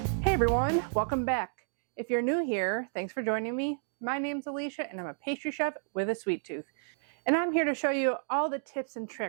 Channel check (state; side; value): silent; left; digital silence